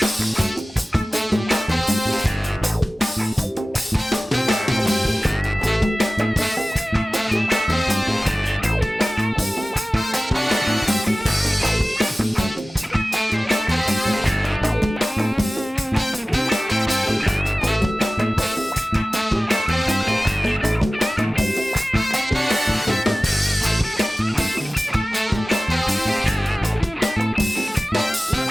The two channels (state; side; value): normal; both; correlation 0.97